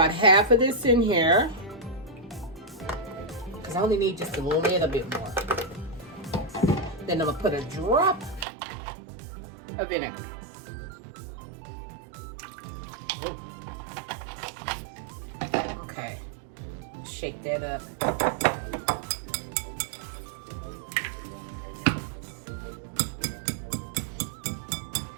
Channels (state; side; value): drops out; left; at 8.5 s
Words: half of this in here. I only need just a little bit more. Then I'm gonna put a drop of vinegar. Ooh. Okay, shake that up.